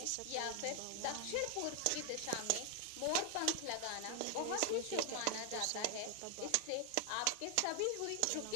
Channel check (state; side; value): different; both; correlation 0.01